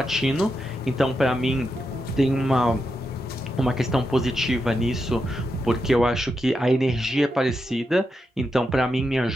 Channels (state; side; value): normal; both; correlation 0.86